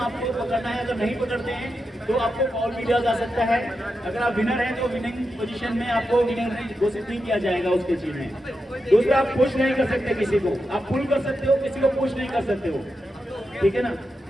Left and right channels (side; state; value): both; normal; correlation 0.88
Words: आपको पकड़ना है, अगर नहीं पकड़ते हैं तो आपको फॉल भी दिया जा सकता है। अगर आप विनर हैं तो विनिंग पोजीशन में आपको विनर घोषित नहीं किया जाएगा उस चीज में। दूसरा, आप पुश नहीं कर सकते किसी को, आप पुल कर सकते हो, किसी को पुश नहीं कर सकते हो, ठीक है ना।